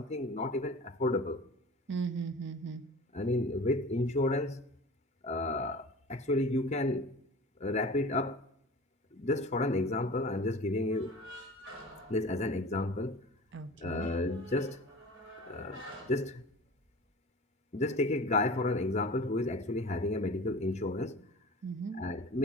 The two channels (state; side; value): normal; both; correlation 0.38